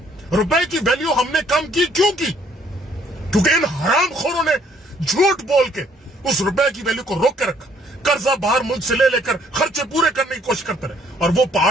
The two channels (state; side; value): normal; both; correlation 0.64